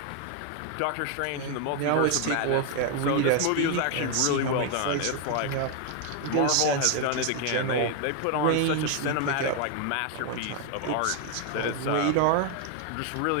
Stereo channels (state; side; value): different; both; correlation 0.01